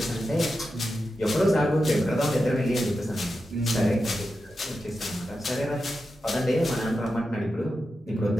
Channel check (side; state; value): both; normal; correlation 0.90